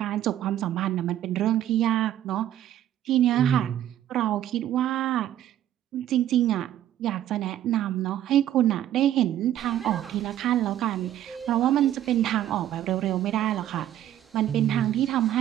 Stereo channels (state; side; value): quieter; left; 11.9 dB